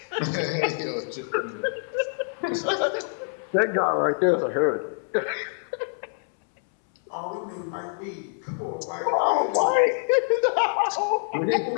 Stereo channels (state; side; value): silent; right; 61 dB below the other